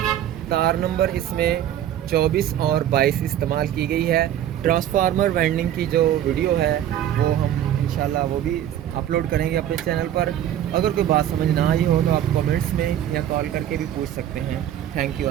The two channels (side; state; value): left; quieter; 11.1 dB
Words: तार नंबर इसमें 24 और 22 इस्तेमाल की गई है। ट्रांसफार्मर वाइंडिंग की जो वीडियो है वो हम इंशाल्लाह वो भी अपलोड करेंगे अपने चैनल पर। अगर कोई बात समझ ना आई हो तो आप कमेंट्स में या कॉल करके भी पूछ सकते हैं। थैंक यू,